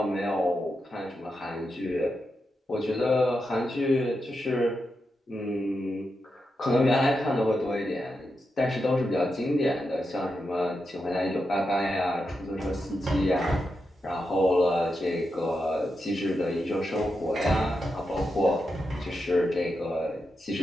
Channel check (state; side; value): normal; both; correlation 0.87